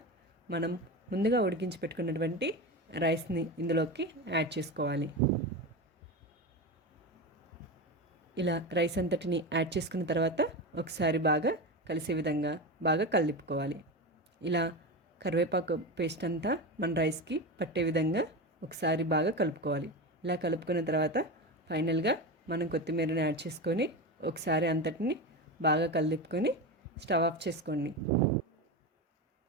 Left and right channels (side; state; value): both; normal; correlation 0.21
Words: మనం ముందుగా ఉడికించి పెట్టుకున్నటువంటి రైస్ని ఇందులోకి యాడ్ చేసుకోవాలి. ఇలా రైస్ అంతటిని యాడ్ చేసుకున్న తర్వాత ఒకసారి బాగా కలిసే విధంగా బాగా కలిపుకోవాలి. ఇలా కరివేపాకు పేస్ట్ అంతా మన రైస్కి పట్టే విధంగా ఒకసారి బాగా కలుపుకోవాలి. ఇలా కలుపుకున్న తర్వాత ఫైనల్గా మనం కొత్తిమీరని యాడ్ చేసుకొని ఒకసారి అంతటిని బాగా కలుపుకొని స్టవ్ ఆఫ్ చేసుకోండి.